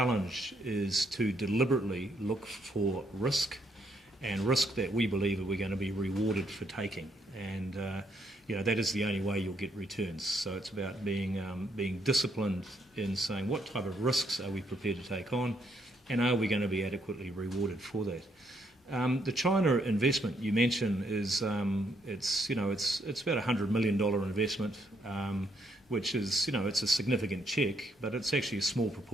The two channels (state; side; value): normal; both; correlation 0.73